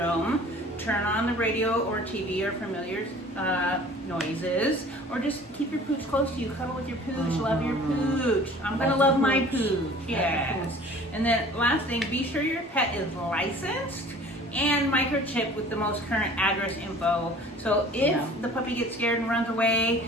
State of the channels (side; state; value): both; normal; correlation 0.48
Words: Turn on the radio or TV or familiar noises, or just keep your pooch close to you. Cuddle with your pooch. Love your pooch. I'm gonna love my pooch. Yes. And then last thing, be sure your pet is licensed and microchipped with the most current address info. So if the puppy gets scared and runs